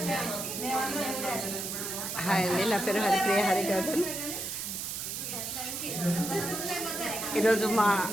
హాయ్ అండి, నా పేరు హరిప్రియ హరిగౌతమ్. ఈరోజు మా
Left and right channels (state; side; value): noise; right; hiss, 4 dB below the sound